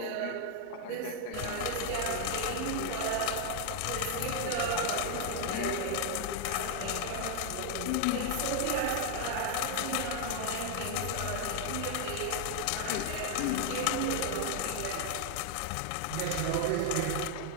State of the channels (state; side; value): different; both; correlation 0.00